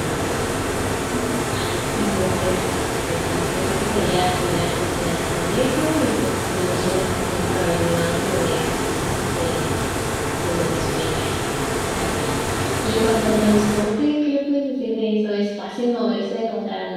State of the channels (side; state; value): both; identical; correlation 1.00